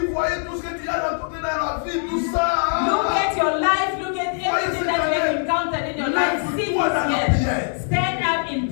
voyez tout ce que tu as rencontré dans la vie, tout ça. Look at your life, look at everything that you have encountered in your life. See this year. Stand up in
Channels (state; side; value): silent; right; 64 dB below the other